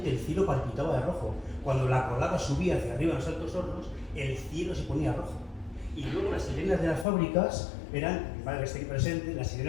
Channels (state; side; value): drops out; right; at 7.1 s